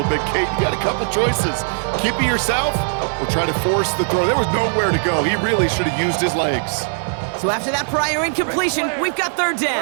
bit. Kate, you got a couple choices. Keep it yourself or try to force the throw. There was nowhere to go. He really should have used his legs. So after that prior incompletion, we've got 3rd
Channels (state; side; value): silent; left; 60 dB below the other